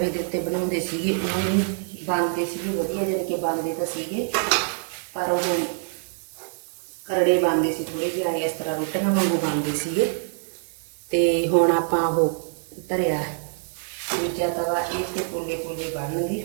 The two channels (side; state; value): left; silent; digital silence